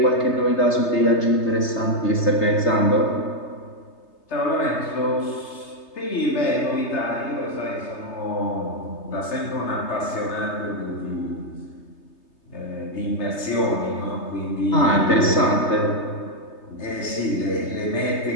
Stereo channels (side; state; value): right; late; 3.3 ms